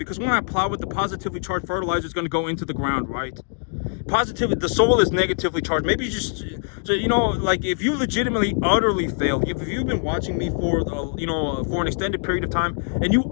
when I plow it, the positively charged fertilizer is gonna go into the ground, right? The soil is negatively charged. Maybe you just, like, if you legitimately utterly fail, if you've been watching me for an extended period of time and you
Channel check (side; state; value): right; silent; 63 dB below the other